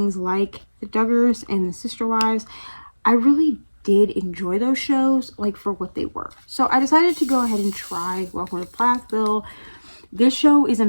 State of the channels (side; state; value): both; inverted; correlation -1.00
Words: like the Duggars and the Sister Wives, I really did enjoy those shows, like, for what they were. So I decided to go ahead and try Welcome to Plathville. This show is